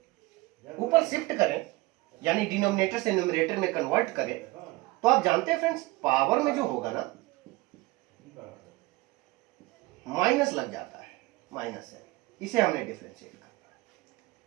ऊपर शिफ्ट करें यानी डिनोमिनेटर से न्यूमरेटर में कन्वर्ट करें, तो आप जानते हैं फ्रेंड्स पावर में जो होगा ना माइनस लग जाता है, माइनस है, इसे हमने डिफरेंशिएट करना है।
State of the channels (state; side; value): quieter; left; 21.0 dB